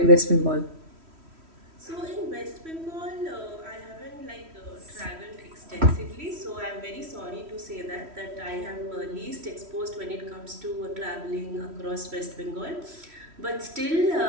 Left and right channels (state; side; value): late; left; 3.1 ms